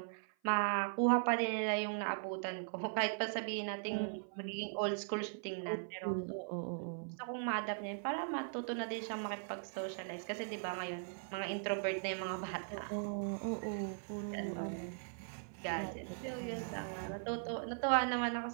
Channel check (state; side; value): silent; left; 51 dB below the other